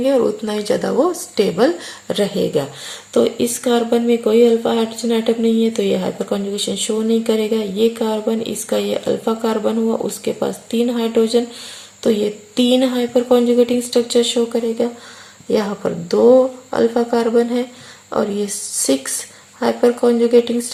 और उतना ही ज़्यादा वो स्टेबल रहेगा. तो इस कार्बन में कोई अल्फा हाइड्रोजन एटम नहीं है तो ये हाइपर कॉन्जुगेशन शो नहीं करेगा. ये कार्बन, इसका ये अल्फा कार्बन हुआ, उसके पास 3 हाइड्रोजन, तो ये 3 हाइपर कॉन्जुगेटिंग स्ट्रक्चर शो करेगा. यहाँ पर 2 अल्फा कार्बन है और ये 6 हाइपर कॉन्जुगेटिंग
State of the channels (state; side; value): identical; both; correlation 1.00